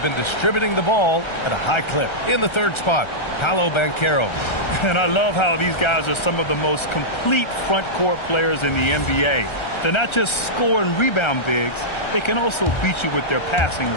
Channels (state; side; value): late; right; 1.3 ms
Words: been distributing the ball at a high clip. In the 3rd spot, Paolo Banchero. And I love how these guys are some of the most complete front court players in the NBA. They're not just score and rebound bigs, they can also beat you with their passing